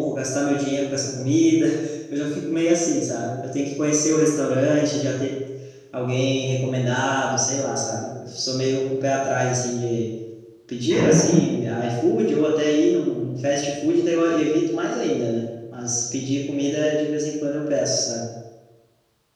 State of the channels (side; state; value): both; identical; correlation 1.00